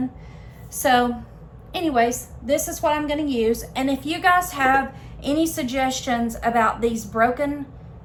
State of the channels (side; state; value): both; identical; correlation 1.00